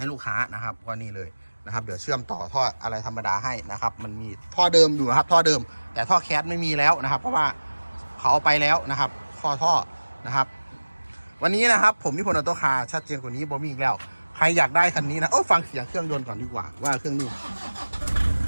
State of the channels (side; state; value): both; inverted; correlation -1.00